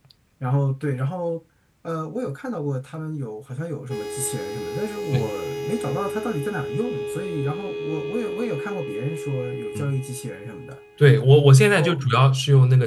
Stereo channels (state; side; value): identical; both; correlation 1.00